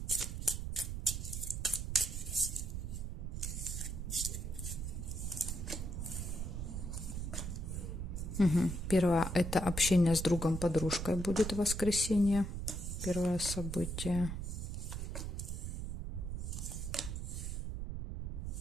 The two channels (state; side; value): noise; right; rumble, 4 dB below the sound